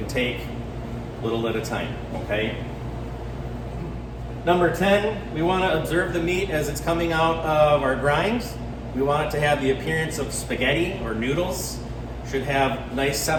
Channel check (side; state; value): both; identical; correlation 1.00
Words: take, little at a time, okay? Number 10, we want to observe the meat as it's coming out of our grinds. We want it to have the appearance of spaghetti or noodles, should have nice